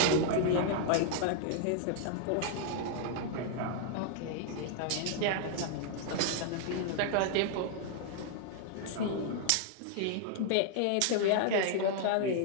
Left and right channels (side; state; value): both; different; correlation 0.00